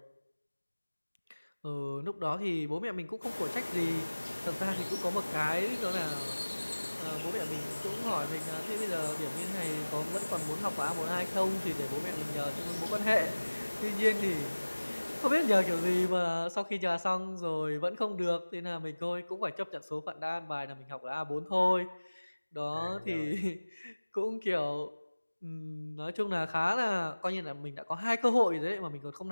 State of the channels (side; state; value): both; inverted; correlation -1.00